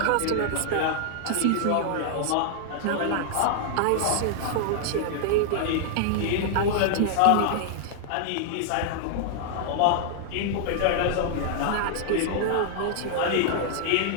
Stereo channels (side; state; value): both; different; correlation -0.01